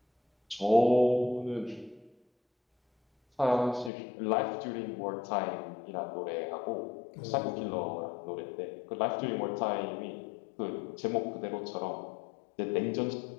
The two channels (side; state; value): right; drops out; at 3.9 s